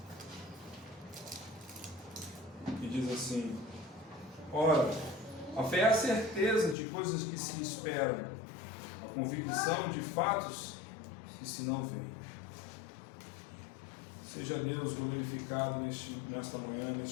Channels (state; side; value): drops out; right; at 6.8 s